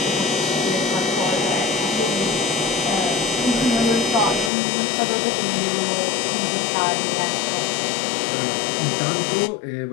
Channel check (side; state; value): right; drops out; at 4.5 s